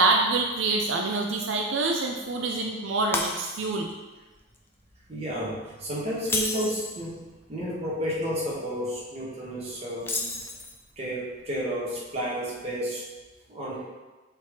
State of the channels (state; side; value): normal; both; correlation 0.18